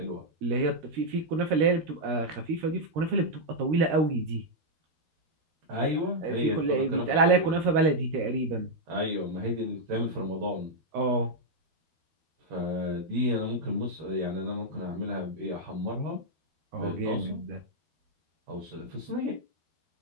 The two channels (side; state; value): left; late; 12 ms